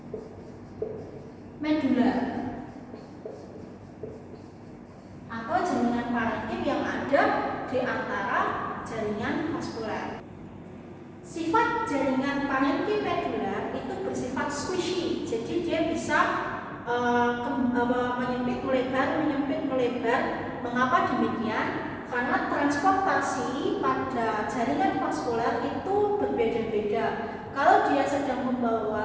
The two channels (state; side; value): identical; both; correlation 1.00